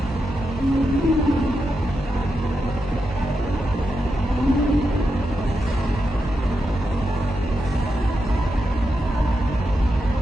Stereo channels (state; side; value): normal; both; correlation 0.87